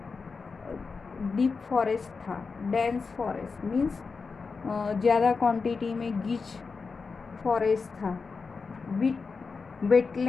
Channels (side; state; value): right; quieter; 4.8 dB